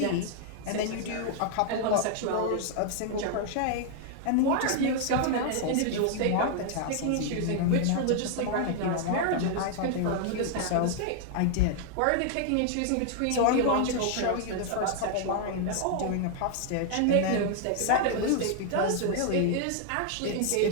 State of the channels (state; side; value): different; both; correlation 0.00